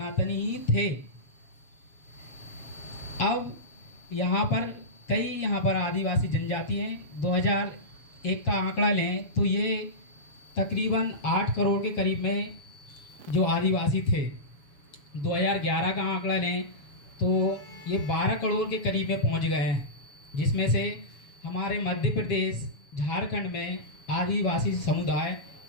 ही थे। अब यहाँ पर आदिवासी जनजाति हैं। 2001 का आंकड़ा लें तो ये तकरीबन 8 करोड़ के करीब में जो आदिवासी थे। 2011 का आंकड़ा लें तो ये 12 करोड़ के करीब में पहुँच गए हैं, जिसमें से हमारे मध्य प्रदेश, झारखंड में आदिवासी समुदाय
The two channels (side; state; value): right; late; 7.1 ms